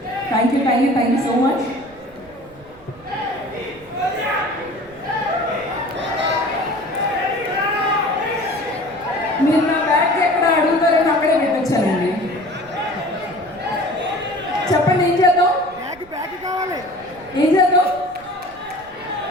Thank you so much. మీరు నా బ్యాగ్ ఎక్కడ అడుగుతారని అక్కడే పెట్టొచ్చానండి. చెప్పండి ఏం చేద్దాం, ఏం చేద్దాం?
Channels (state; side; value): noise; right; rumble, 25 dB below the sound